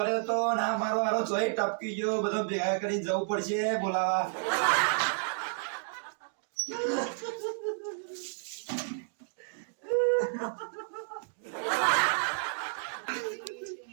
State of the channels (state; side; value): silent; left; digital silence